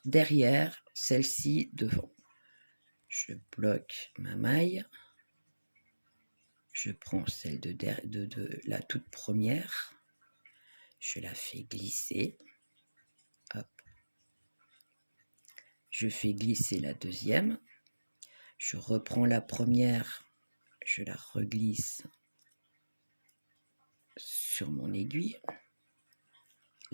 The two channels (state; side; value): inverted; both; correlation -1.00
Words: derrière, celle-ci devant. Je bloque ma maille, je prends celle de la toute première, je la fais glisser, hop, je fais glisser la deuxième, je reprends la première, je la reglisse sur mon aiguille,